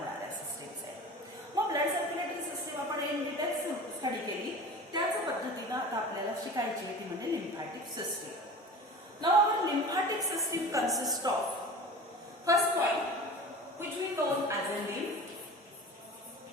सिस्टीम्स आहेत. मग ब्लड सर्क्युलेटरी सिस्टीम आपण इन डिटेल्स स्टडी केली, त्याच पद्धतीने आता आपल्याला शिकायची आहे ती म्हणजे lymphatic system. Now our lymphatic system consist of first point which we known as a lymph.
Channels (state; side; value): normal; both; correlation 0.36